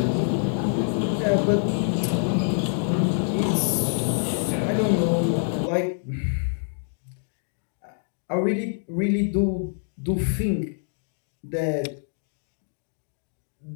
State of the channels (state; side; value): silent; right; digital silence